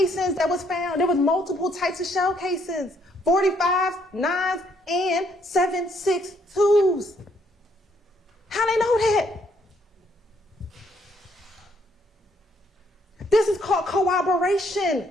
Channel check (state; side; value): normal; both; correlation 0.69